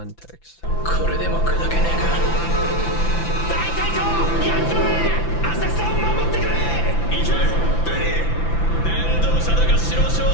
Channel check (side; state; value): right; late; 5.9 ms